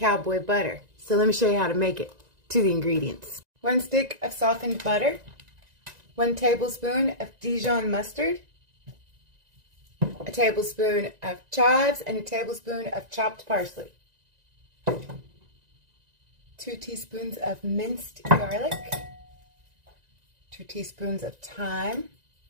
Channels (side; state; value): left; late; 1.9 ms